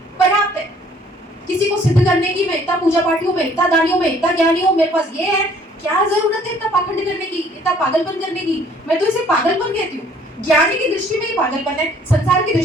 पर्याप्त है। किसी को सिद्ध करने की, मैं इतना पूजा पाठी हूँ, मैं इतना दानी हूँ, मैं इतना ज्ञानी हूँ, मेरे पास ये है, क्या जरूरत है इतना पाखंड करने की, इतना पागलपन करने की? मैं तो इसे पागलपन कहती हूँ। ज्ञानी की दृष्टि में ही पागलपन है, संसार की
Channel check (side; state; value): both; normal; correlation 0.59